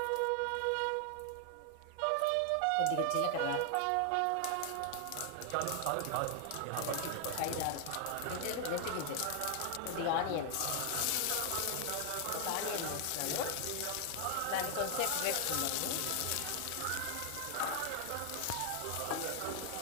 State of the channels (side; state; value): both; different; correlation 0.00